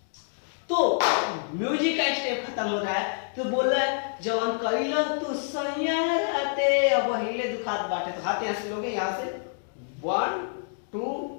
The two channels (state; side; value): silent; right; digital silence